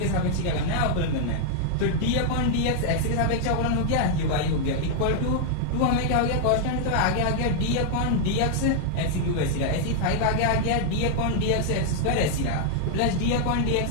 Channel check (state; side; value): different; both; correlation -0.01